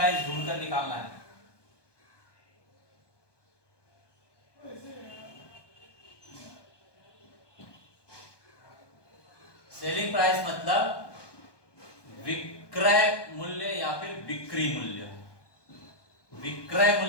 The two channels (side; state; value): right; late; 1.2 ms